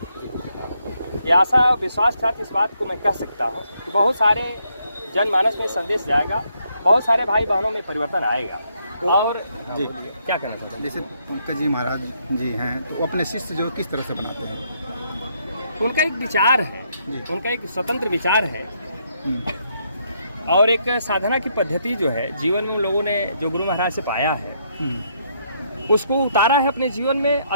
ये आशा विश्वास के साथ इस बात को मैं कह सकता हूँ कि बहुत सारे जनमानस में संदेश जाएगा, बहुत सारे भाई बहनों में परिवर्तन आएगा। और जी क्या कहना चाहते हैं? जैसे पंकज जी महाराज जी हैं तो वो अपने शिष्य जो किस तरह से बनाते हैं? उनका एक विचार है, उनका एक स्वतंत्र विचार है और एक साधना की पद्धति जो है जीवन में लोगों ने जो गुरु महाराज से पाया है उसको उतारा है अपने जीवन में,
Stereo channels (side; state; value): both; inverted; correlation -0.74